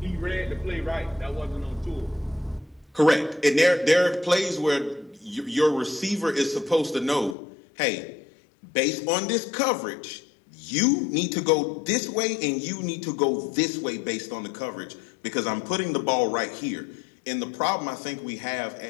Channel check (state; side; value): drops out; right; at 7.4 s